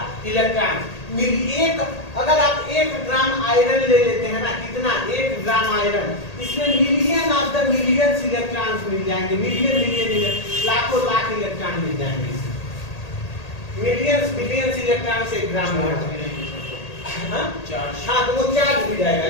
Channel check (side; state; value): right; late; 1.8 ms